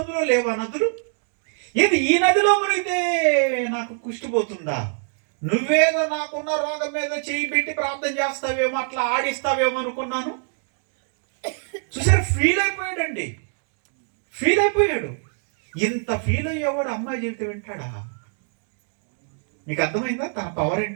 లేవా నదులు? ఏది ఈ నదిలో మునిగితే నాకు కుష్టిపోతుందా? నువ్వేదో నాకున్న రోగం మీద చేయి పెట్టి ప్రార్థన చేస్తావేమో, అట్లా ఆడిస్తావేమో అనుకున్నాను. చూసారు, ఫీల్ అయిపోయాడండి. ఫీల్ అయిపోయాడు. ఇంత ఫీల్ అయ్యేవాడు అమ్మాయి చెబితే వింటాడా? మీకు అర్థమైందా తన పవర్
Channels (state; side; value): silent; left; 63 dB below the other